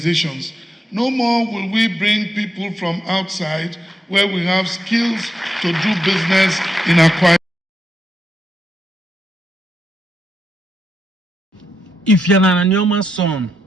No more will we bring people from outside where we have skills to do business in Akwa Ibom. If you're an Anioma son,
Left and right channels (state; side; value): normal; both; correlation 0.84